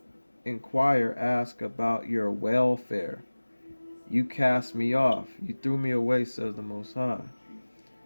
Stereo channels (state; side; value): inverted; both; correlation -1.00